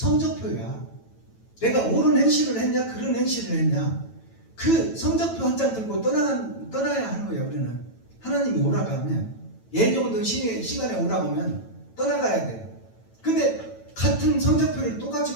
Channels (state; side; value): late; right; 9.1 ms